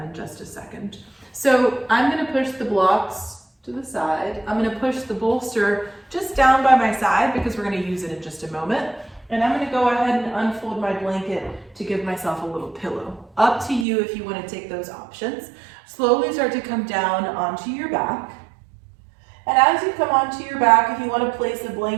in just a second. So I'm going to push the blocks to the side. I'm going to push the bolster just down by my side because we're going to use it in just a moment. And I'm going to go ahead and unfold my blanket to give myself a little pillow. Up to you if you want to take those options. Slowly start to come down onto your back. And as you come onto your back, if you want to place a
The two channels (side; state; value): left; drops out; at 13.9 s